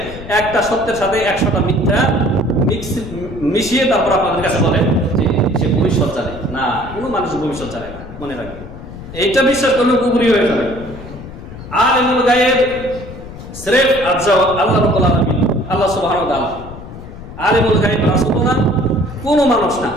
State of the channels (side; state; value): left; noise; rumble, 13 dB below the sound